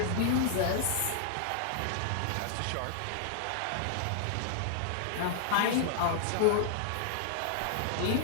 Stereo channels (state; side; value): different; both; correlation -0.01